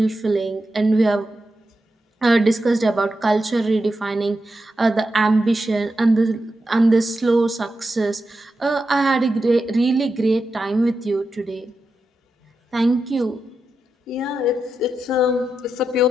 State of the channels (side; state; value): both; normal; correlation 0.88